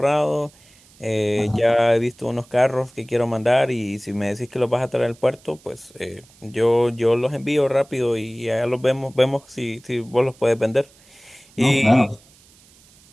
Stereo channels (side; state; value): right; noise; hiss, 28 dB below the sound